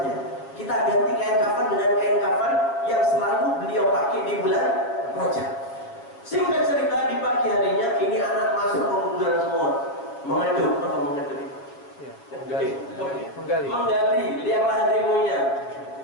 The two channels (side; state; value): right; late; 7.2 ms